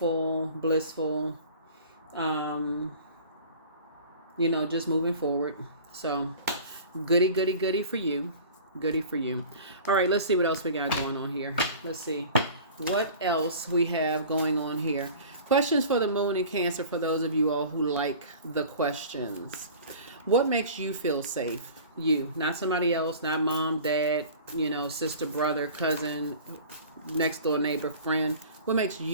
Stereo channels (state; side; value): inverted; both; correlation -0.42